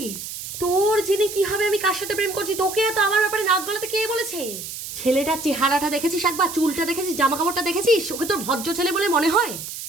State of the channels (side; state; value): right; noise; hiss, 9 dB below the sound